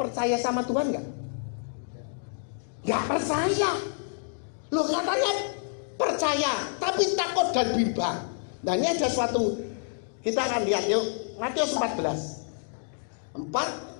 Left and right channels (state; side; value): silent; right; digital silence